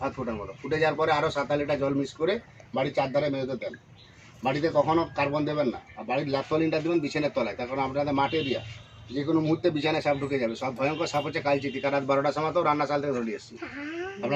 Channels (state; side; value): identical; both; correlation 1.00